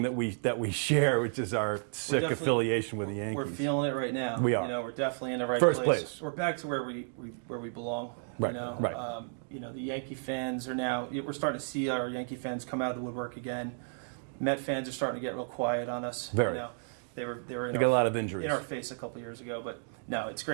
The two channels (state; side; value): silent; left; digital silence